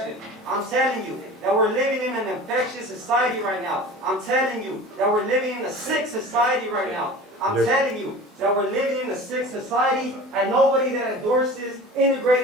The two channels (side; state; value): both; normal; correlation 0.38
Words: I'm telling you that we're living in an infectious society right now. I'm telling you that we're living in a sick society right now. I'm telling you that we're living in a sick society and nobody that endorses